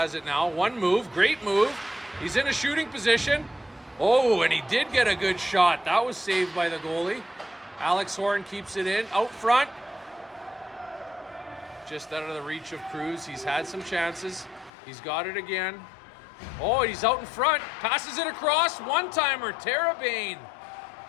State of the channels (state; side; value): drops out; right; at 14.7 s